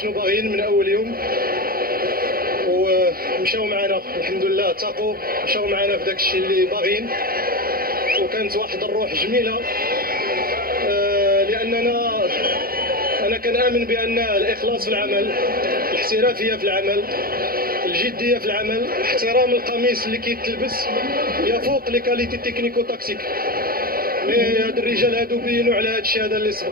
باغيين من أول يوم ومشاو معنا الحمد لله، تاقوا مشاو معنا في داك الشيء اللي باغيين، وكانت واحد الروح جميلة. لأننا أنا كنآمن بأن الإخلاص في العمل، الاحترافية في العمل، الجدية في العمل، احترام القميص اللي كيتلبس يفوق لي كاليتي تكنيكو تاكتيك. هاد الرجال هادو بينوا على هاد الشيء هذا اللي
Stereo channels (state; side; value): late; left; 0.43 ms